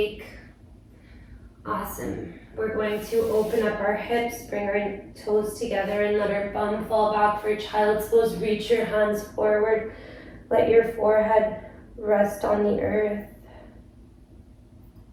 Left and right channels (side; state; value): both; identical; correlation 1.00